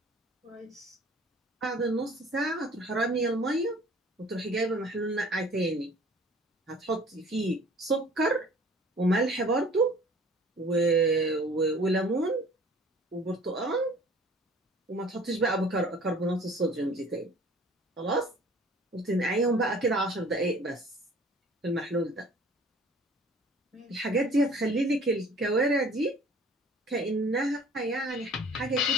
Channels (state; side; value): normal; both; correlation 0.50